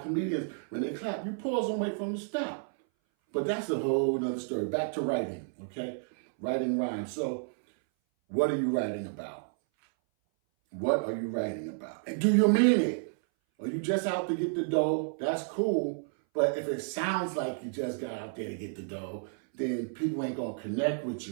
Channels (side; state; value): left; silent; 57 dB below the other